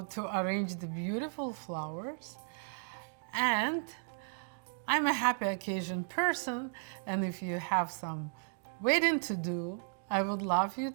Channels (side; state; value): left; silent; digital silence